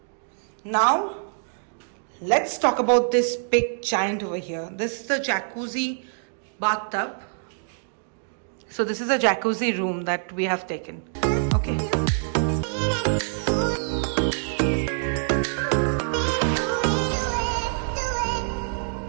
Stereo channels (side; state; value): left; silent; digital silence